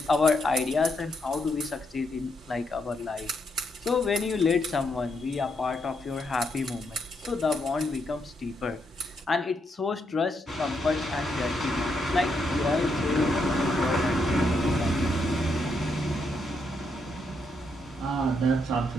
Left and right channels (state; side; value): normal; both; correlation 0.78